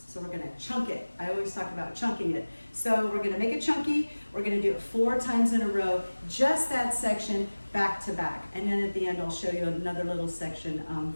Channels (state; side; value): inverted; both; correlation -1.00